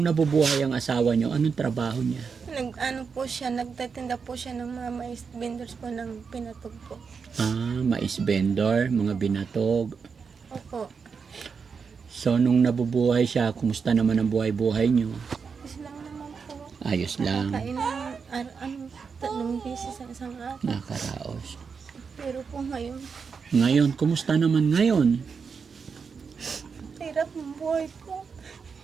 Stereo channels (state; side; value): quieter; left; 5.7 dB